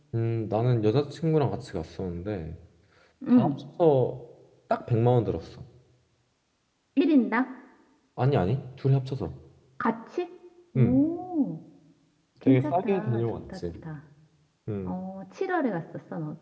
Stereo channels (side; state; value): both; identical; correlation 1.00